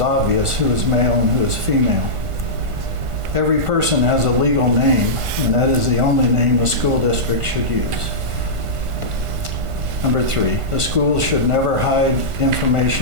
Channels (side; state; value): left; late; 1.5 ms